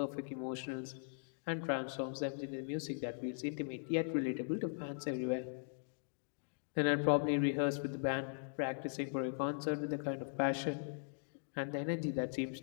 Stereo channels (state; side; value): silent; right; digital silence